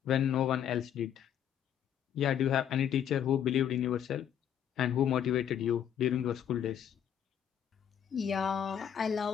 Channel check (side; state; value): right; quieter; 9.3 dB